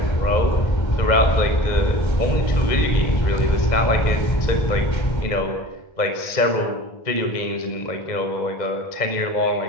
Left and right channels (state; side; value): late; right; 2.0 ms